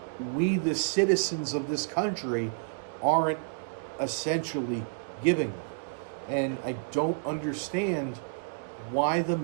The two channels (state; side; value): quieter; left; 39.5 dB